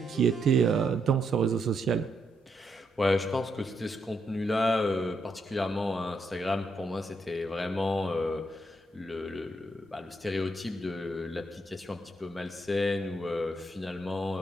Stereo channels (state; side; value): normal; both; correlation 0.78